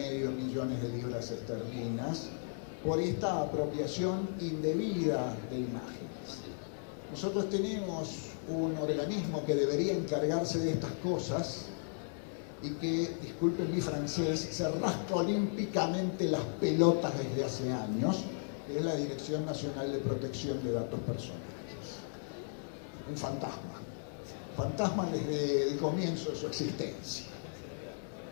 millones de libras esterlinas por esta apropiación indebida de imágenes. Nosotros tenemos un organismo que debería encargarse de estas cosas y que, disculpen mi francés, se rasca olímpicamente las pelotas desde hace años, que es la Dirección Nacional de Protección de Datos Personales. Un fantasma desde el comienzo de su existencia.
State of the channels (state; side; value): silent; right; digital silence